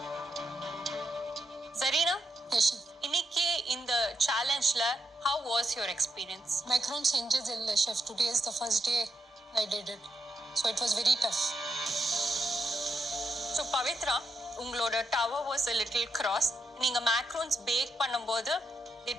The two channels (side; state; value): both; normal; correlation 0.82